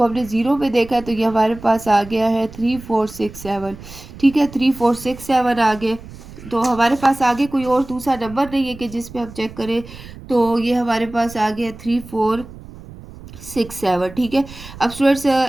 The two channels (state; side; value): noise; right; rumble, 16 dB below the sound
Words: हमने 0 में देखा है, तो ये हमारे पास आ गया है 3467। ठीक है, 3467 आ गए। तो हमारे पास आगे कोई और दूसरा नंबर नहीं है कि जिस पे हम चेक करें, तो ये हमारे पास आ गया 3467। ठीक है, अब स्टूडेंट्स